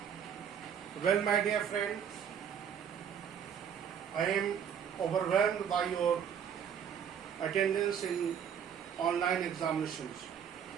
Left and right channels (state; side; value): quieter; left; 8.1 dB